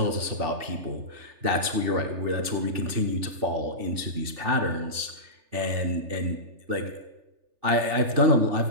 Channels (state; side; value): late; left; 3.4 ms